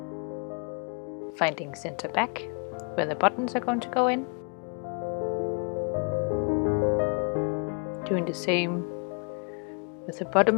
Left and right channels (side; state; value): right; quieter; 37.2 dB